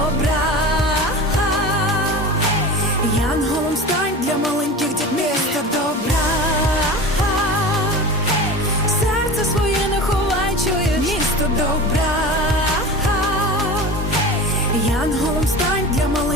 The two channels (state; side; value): normal; both; correlation 0.32